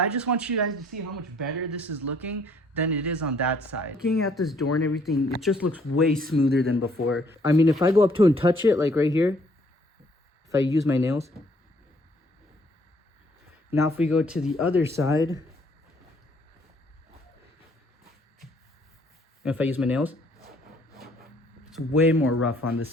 just want you guys to see how much better this is looking than it is on that side. Looking at this door and everything, it just looks way smoother than before. I mean, if I go up to and touch it, like right here, if I use my nails. Now if we go to the other side, and if I use my nails, it's way more rough on this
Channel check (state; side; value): normal; both; correlation 0.63